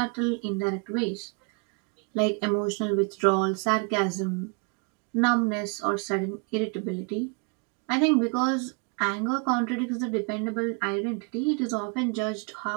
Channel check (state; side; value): quieter; left; 33.3 dB